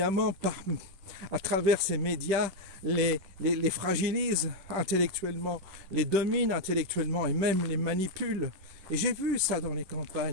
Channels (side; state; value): left; late; 10 ms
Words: à travers ces médias les fragilisent intellectuellement, les dominent intellectuellement et même les manipulent. Et j'ai vu ça dans les